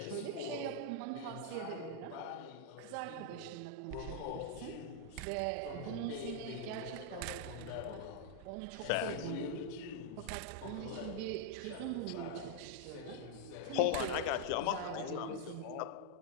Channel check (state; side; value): different; both; correlation -0.01